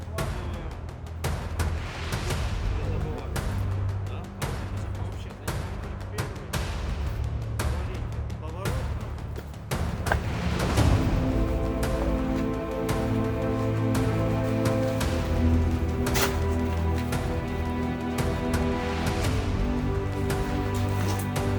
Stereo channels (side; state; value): both; identical; correlation 1.00